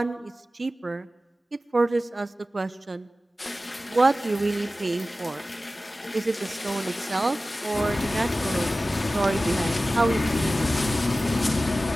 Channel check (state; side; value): normal; both; correlation 0.96